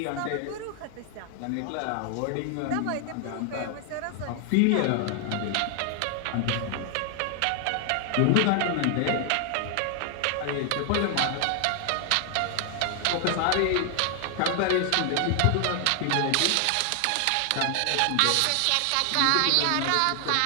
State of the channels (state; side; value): different; both; correlation 0.00